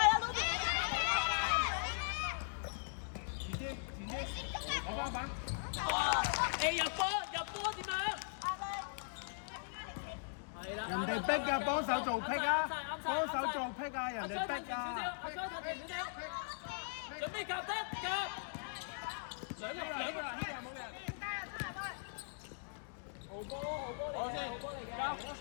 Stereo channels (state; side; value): silent; right; digital silence